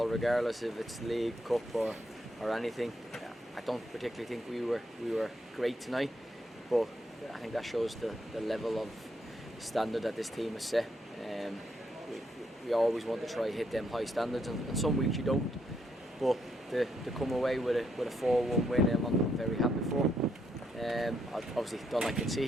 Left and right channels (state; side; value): normal; both; correlation 0.77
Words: regardless if it's league, cup or anything. I don't particularly think we were great tonight, but I think that shows the level of standard that this team has set. We always want to try hit them high standards, and some weeks you don't. But to come away with a 4-1 win, I'm very happy for. I obviously don't like